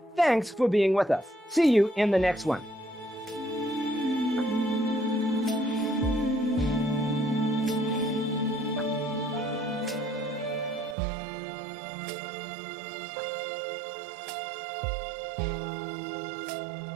Thanks for being with us. See you in the next one.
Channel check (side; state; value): left; drops out; at 11.0 s